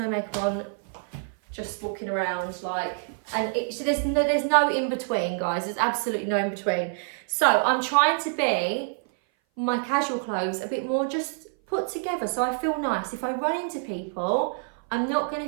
makeup on, just walking around so there's no in between, guys. There's absolutely no in between. So I'm trying to be my casual clothes a bit more just put together so I feel nice. If I run into people, I'm not going to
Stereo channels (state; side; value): silent; left; 58 dB below the other